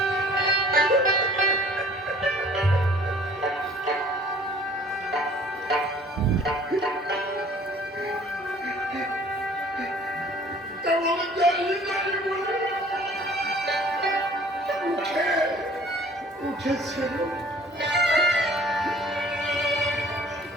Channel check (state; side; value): normal; both; correlation 0.52